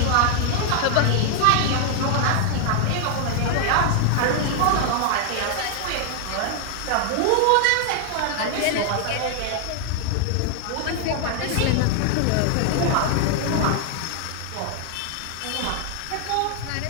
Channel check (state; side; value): different; both; correlation 0.00